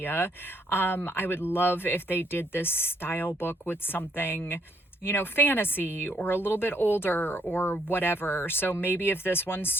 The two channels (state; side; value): normal; both; correlation 0.70